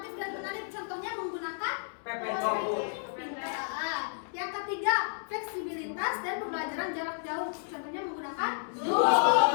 dan menarik, contohnya menggunakan yang ketiga, fleksibilitas dan pembelajaran jarak jauh, contohnya menggunakan Zoom.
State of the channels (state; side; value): silent; right; digital silence